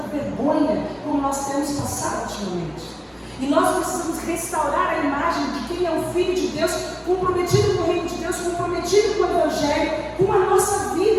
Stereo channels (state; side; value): identical; both; correlation 1.00